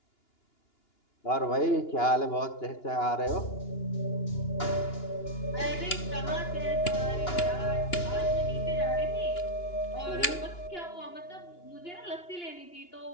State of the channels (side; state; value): right; late; 2.9 ms